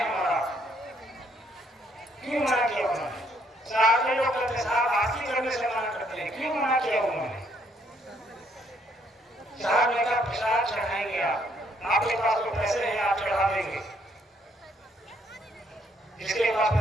हमारा, क्यों मना किया उन्होंने? साहब के लोग कहते साहब आरती करने से मना करते हैं, क्यों मना किया उन्होंने? साहब ने कहा प्रसाद चढ़ाएंगे आप, आपके पास तो पैसे हैं, आप चढ़ा देंगे, जिसके पास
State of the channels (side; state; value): both; normal; correlation 0.69